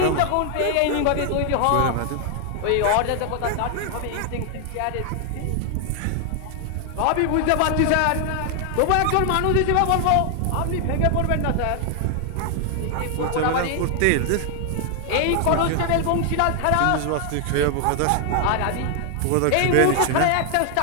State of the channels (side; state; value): both; different; correlation 0.00